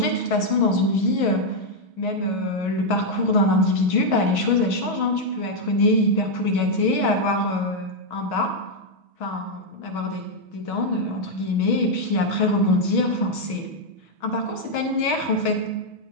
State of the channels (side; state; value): right; late; 6.2 ms